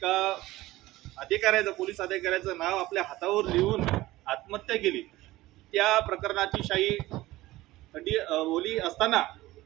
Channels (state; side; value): quieter; left; 17.7 dB